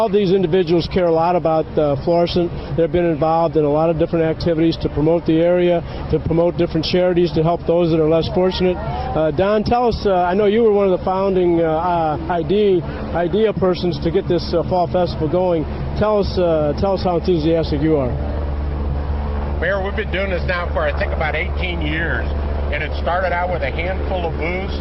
these individuals care a lot about Florissant. They've been involved in a lot of different activities to promote the area, to promote different charities, to help those that are less fortunate. Don, tell us, I know you were one of the founding idea persons to get this fall festival going. Tell us how enthusiastic you are. Mayor, we've been doing this now for, I think, about 18 years. And it started out with a handful of booths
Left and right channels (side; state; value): both; identical; correlation 1.00